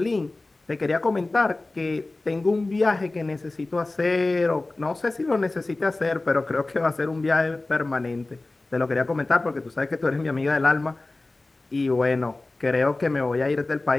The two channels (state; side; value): quieter; right; 3.1 dB